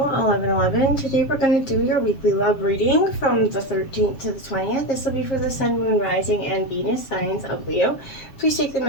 1111. Today we're going to do your weekly love reading from the 13th to the 20th. This will be for the Sun, Moon, Rising, and Venus signs of Leo. Please take the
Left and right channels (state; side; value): late; right; 7.5 ms